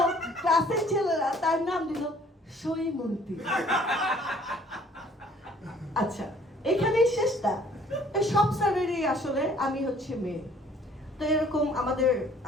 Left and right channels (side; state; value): both; normal; correlation 0.57